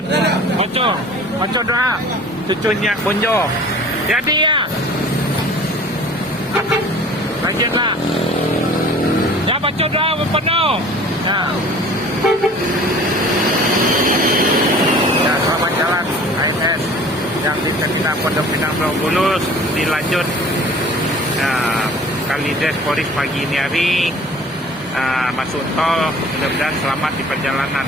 Baca doa. Cucunya Bonjo. Jadi ya. Lanjutlah. Ya baca doa penuh. Ya. Ya selamat jalan AMS yang di Terminal Pondok Pinang Pulau Bulus dilanjut. Kalides Polis pagi ini hari masuk tol, mudah-mudahan selamat di perjalanan.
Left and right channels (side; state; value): left; noise; hum, 26 dB below the sound